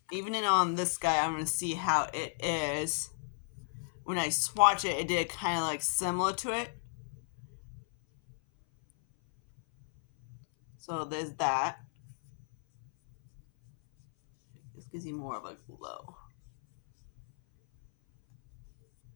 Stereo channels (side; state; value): right; silent; 55 dB below the other